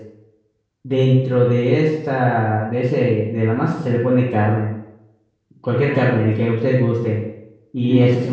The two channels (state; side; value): identical; both; correlation 1.00